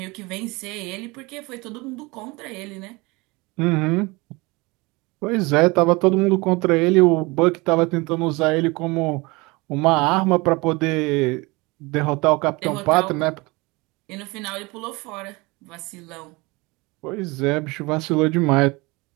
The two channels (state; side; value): quieter; left; 24.8 dB